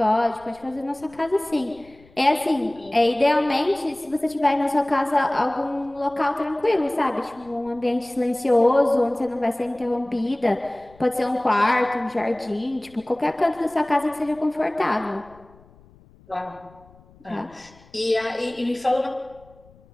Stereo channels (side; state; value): left; noise; rumble, 27 dB below the sound